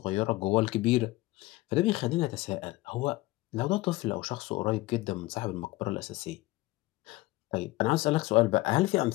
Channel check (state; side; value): quieter; right; 19.3 dB